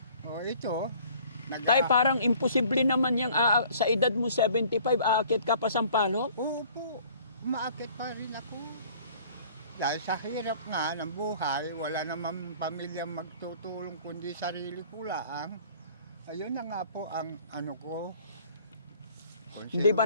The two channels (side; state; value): both; inverted; correlation -0.53